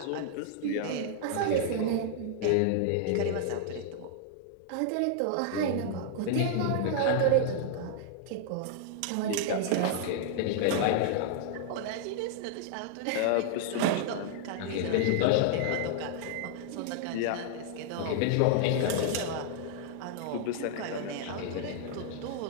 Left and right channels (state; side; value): different; both; correlation -0.01